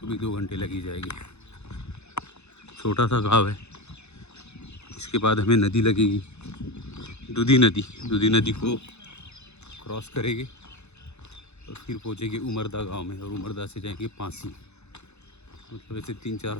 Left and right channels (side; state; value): right; late; 0.81 ms